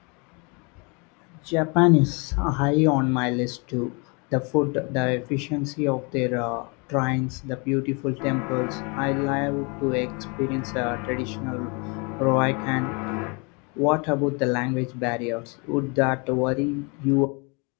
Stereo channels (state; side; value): quieter; right; 31.8 dB